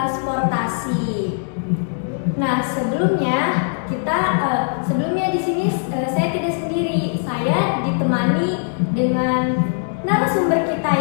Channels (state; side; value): silent; right; 65 dB below the other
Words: Nah, sebelumnya di sini saya tidak sendiri. Saya ditemani dengan narasumber kita